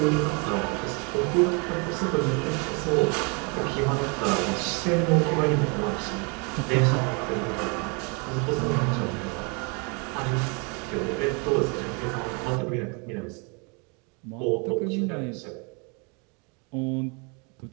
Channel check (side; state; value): left; quieter; 33.2 dB